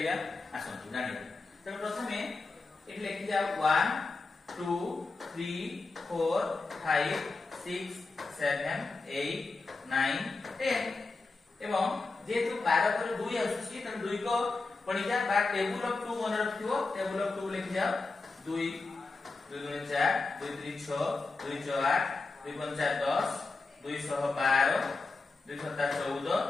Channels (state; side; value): quieter; right; 3.8 dB